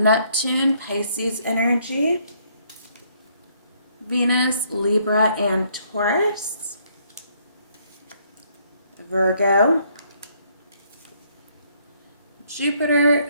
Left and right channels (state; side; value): inverted; both; correlation -0.68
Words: Pisces energy, Venus, Libra, and Taurus, Virgo, Jupiter,